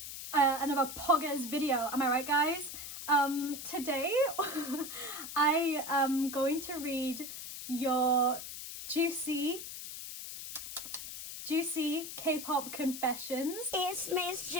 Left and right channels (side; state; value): left; noise; hiss, 9 dB below the sound